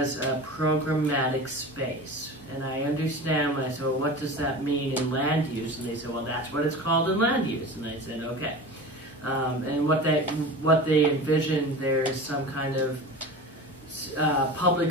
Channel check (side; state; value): both; normal; correlation 0.33